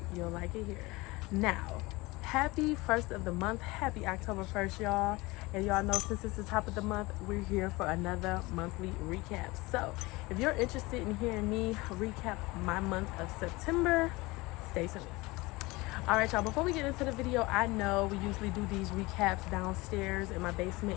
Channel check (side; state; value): right; quieter; 22.5 dB